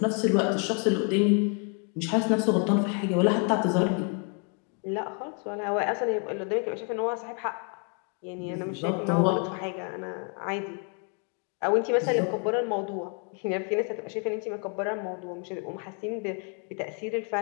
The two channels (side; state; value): right; quieter; 38.1 dB